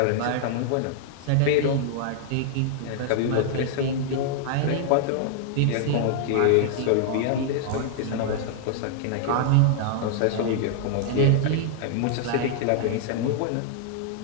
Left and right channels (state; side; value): different; both; correlation -0.01